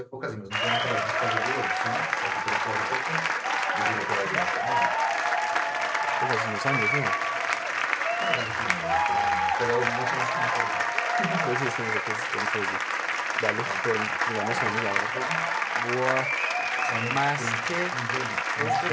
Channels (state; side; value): identical; both; correlation 1.00